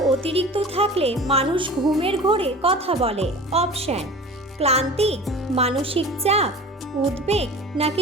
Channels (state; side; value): normal; both; correlation 0.39